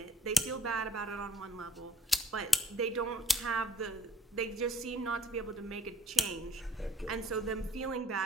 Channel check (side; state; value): both; normal; correlation 0.63